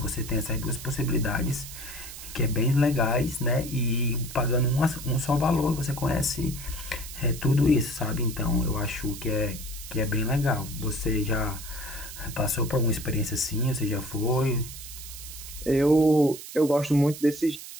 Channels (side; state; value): right; noise; hiss, 12 dB below the sound